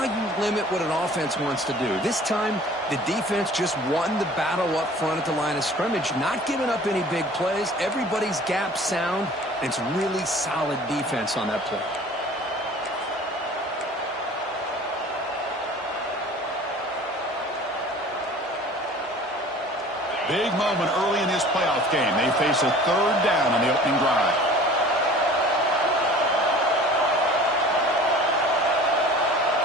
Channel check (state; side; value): normal; both; correlation 0.46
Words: you limit what an offense wants to do. This time, the defense just won the battle up front at the line of scrimmage, not giving up any big plays. Everybody's gap sound, and it's really solid defense on that play. Big moment early in this playoff game. They face a third down on the opening drive.